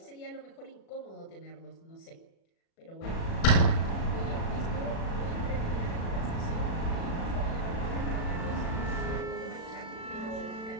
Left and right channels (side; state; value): right; late; 36 ms